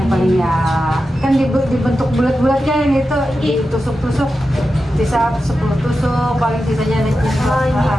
paling ya kan dibentuk bulat-bulat kan gitu, ditusuk-tusuk, sisa 10 tusuk, paling sisanya ada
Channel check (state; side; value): normal; both; correlation 0.91